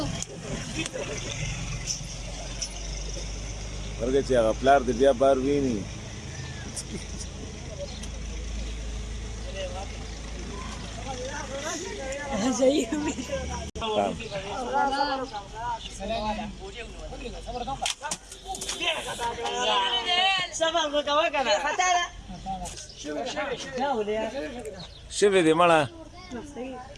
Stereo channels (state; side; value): identical; both; correlation 1.00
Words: ورګه چې هغه پلار دې بیا بار ویني شوی دی مړه